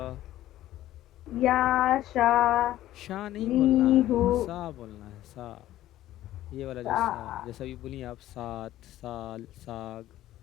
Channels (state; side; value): quieter; right; 14.1 dB